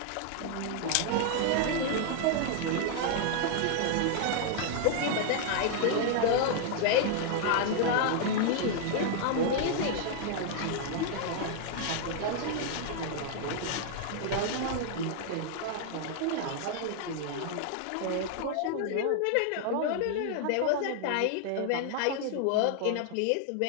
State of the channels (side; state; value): both; different; correlation 0.00